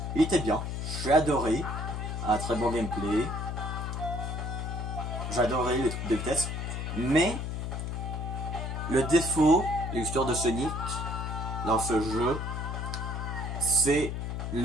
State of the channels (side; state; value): left; noise; hum, 3 dB below the sound